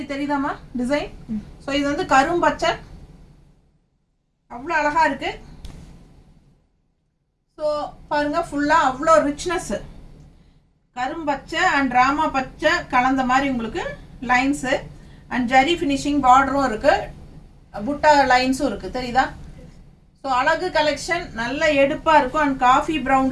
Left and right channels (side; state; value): both; identical; correlation 1.00